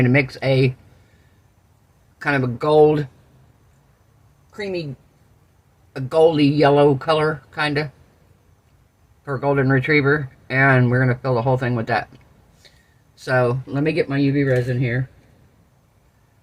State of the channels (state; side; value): identical; both; correlation 1.00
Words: to mix a kind of a gold, creamy, a goldy yellow color, kind of, for a golden retriever. And we're going to fill the whole thing with that. So, let me get my UV resin here.